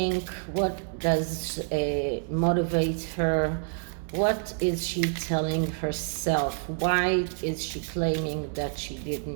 What does motivate her? What is she telling herself? Why is she claiming that she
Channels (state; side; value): silent; left; 58 dB below the other